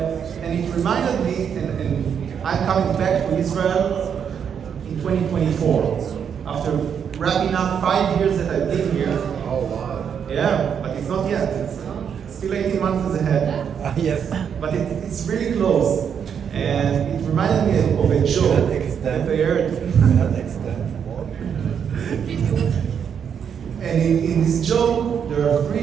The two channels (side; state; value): left; quieter; 7.7 dB